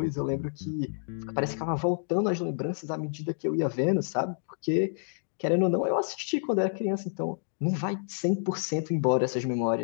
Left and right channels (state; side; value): silent; right; digital silence